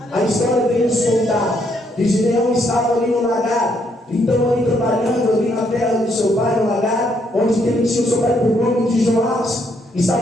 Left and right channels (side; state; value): both; normal; correlation 0.73